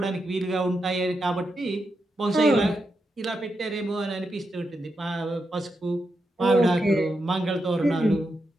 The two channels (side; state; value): both; normal; correlation 0.85